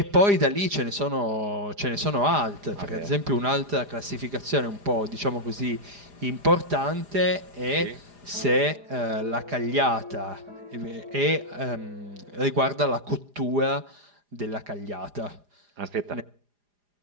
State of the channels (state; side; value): late; left; 4.9 ms